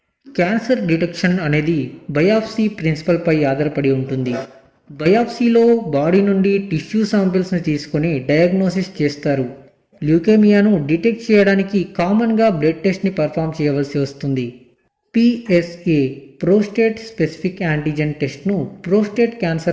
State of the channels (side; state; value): both; identical; correlation 1.00